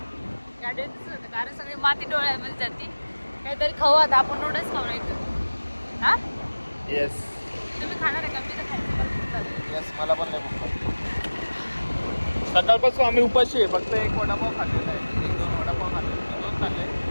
गाडीवर दिसत होतं, कारण सगळी माती डोळ्यामध्ये जाते. काहीतरी खाऊ आता आपण, नूडल्स खाऊ नाही तर. हा येस. तुम्ही खाणार आहे का? मी तर खायचं. येस, मला पण नाही भूक. सकाळपासून आम्ही उपाशी आहे. फक्त 1 वडापाव खाल्लेला आहे, 1-2 वडापाव खाल्ले, 2 खाल्ले,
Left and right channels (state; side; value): inverted; both; correlation -1.00